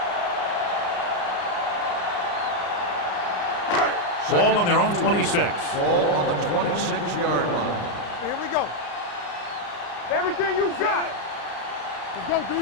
Ball on their own 26. Ball on the 26-yard line. Here we go. Everything you got. Let's go, D.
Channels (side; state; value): right; late; 34 ms